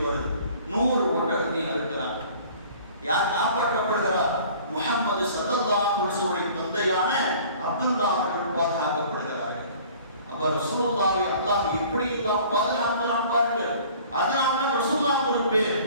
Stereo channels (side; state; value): both; inverted; correlation -0.50